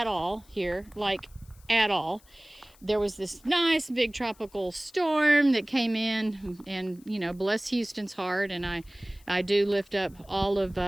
all here, like at all. There was this nice big tropical storm that came in, and you know, bless Houston's heart, and I do lift up all of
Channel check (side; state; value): left; noise; hiss, 28 dB below the sound